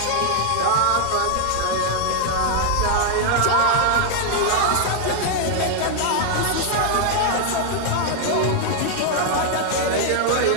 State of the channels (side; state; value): both; different; correlation 0.00